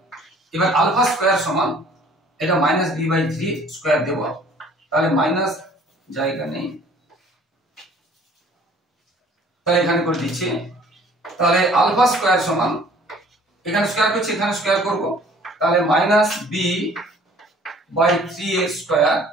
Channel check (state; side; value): normal; both; correlation 0.54